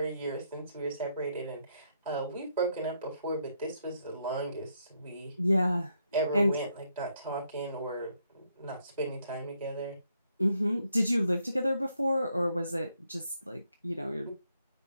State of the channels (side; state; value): both; inverted; correlation -0.76